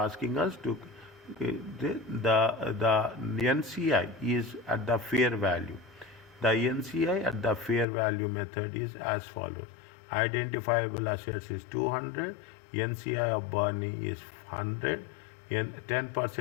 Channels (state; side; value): drops out; right; at 7.9 s